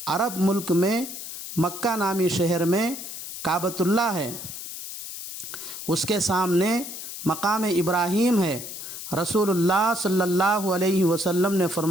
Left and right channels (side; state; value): left; noise; hiss, 9 dB below the sound